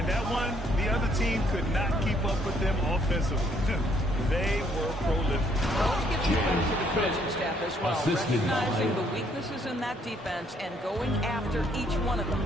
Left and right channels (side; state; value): both; normal; correlation 0.68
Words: that one, the other team could not keep up with them offensively. They were prolific. Let's give some credit to the coaching staff as well, recognizing the weaknesses in that defense and going after each one of them.